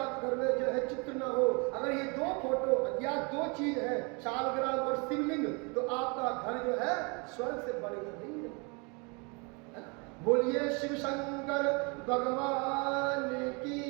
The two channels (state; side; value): quieter; left; 31.8 dB